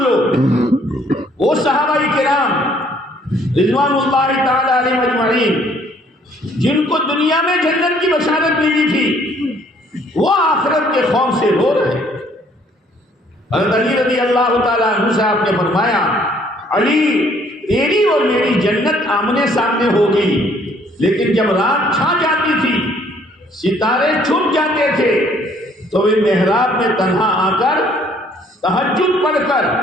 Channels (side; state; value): both; normal; correlation 0.62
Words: وہ صحابہ کرام رضوان اللہ تعالی علیہ اجمعین جن کو دنیا میں جنت کی بشارت ملی تھی، وہ آخرت کے خوف سے رو رہے ہیں۔ حضرت علی رضی اللہ تعالیٰ عنہ سے آپ نے فرمایا علی تیری اور میری جنت آمنے سامنے ہوگی، لیکن جب رات چھا جاتی تھی، ستارے چھپ جاتے تھے، تو وہ محراب میں تنہا آ کر تہجد پڑھ کر